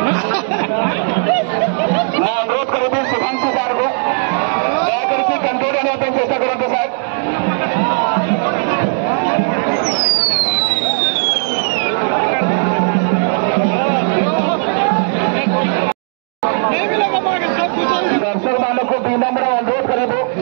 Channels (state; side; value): silent; left; 63 dB below the other